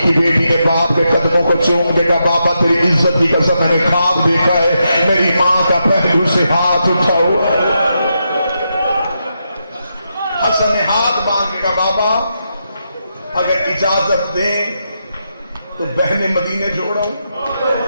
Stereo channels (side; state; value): both; inverted; correlation -0.84